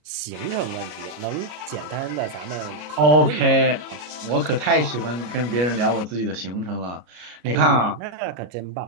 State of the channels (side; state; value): left; late; 33 ms